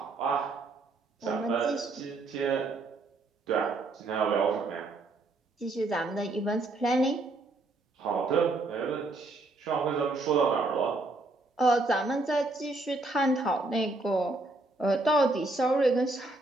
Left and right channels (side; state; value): left; quieter; 3.1 dB